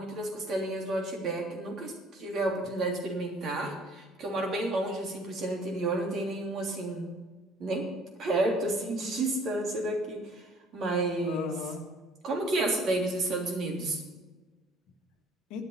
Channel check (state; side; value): normal; both; correlation 0.56